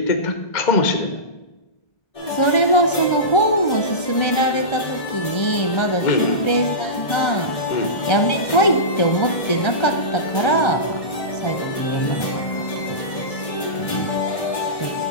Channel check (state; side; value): late; right; 1.3 ms